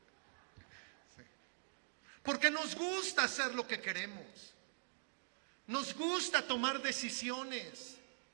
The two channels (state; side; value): silent; left; digital silence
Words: Sí. Porque nos gusta hacer lo que queremos. Nos gusta tomar decisiones.